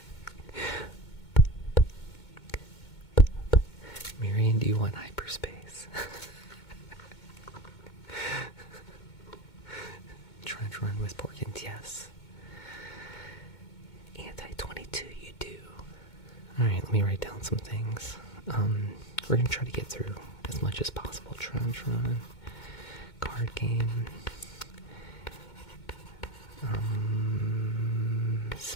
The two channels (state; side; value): late; right; 2.2 ms